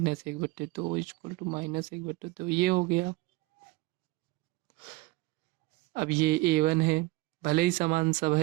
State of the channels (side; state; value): left; quieter; 21.1 dB